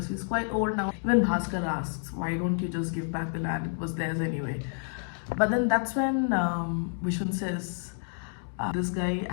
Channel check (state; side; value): silent; right; 58 dB below the other